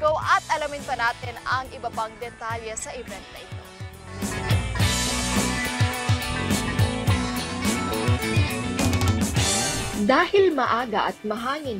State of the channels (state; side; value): identical; both; correlation 1.00